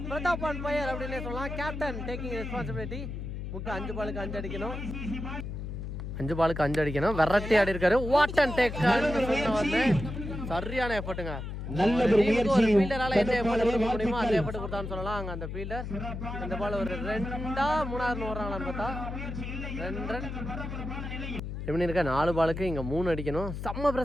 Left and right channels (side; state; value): left; noise; hum, 6 dB below the sound